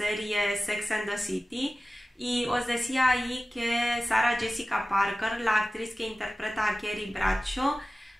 Sex and the City, y os decía ahí que Sarah Jessica Parker, la actriz que interpreta a Carrie Bradshaw,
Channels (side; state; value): both; normal; correlation 0.96